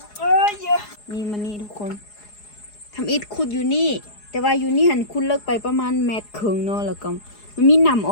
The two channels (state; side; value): late; right; 4.8 ms